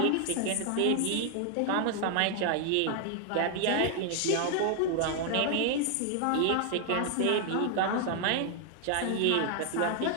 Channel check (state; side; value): different; both; correlation 0.00